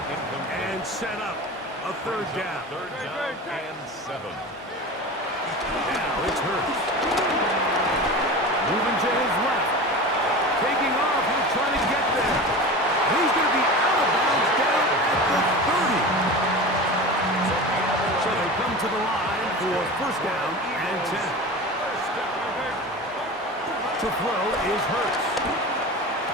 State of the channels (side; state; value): both; normal; correlation 0.31